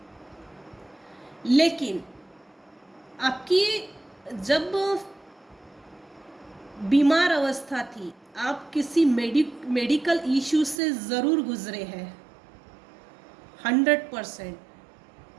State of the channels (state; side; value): drops out; left; at 10.8 s